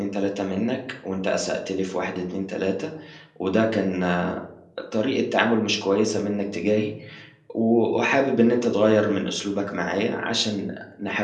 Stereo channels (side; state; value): both; identical; correlation 1.00